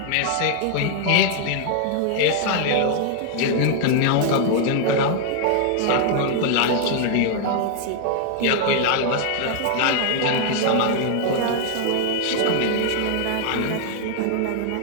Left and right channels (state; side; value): different; both; correlation 0.00